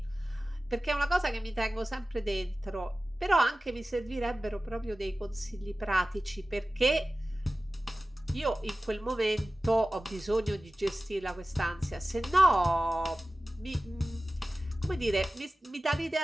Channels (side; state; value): both; normal; correlation 0.96